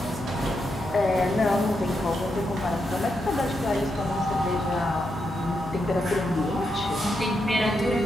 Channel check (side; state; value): left; noise; hum, 15 dB below the sound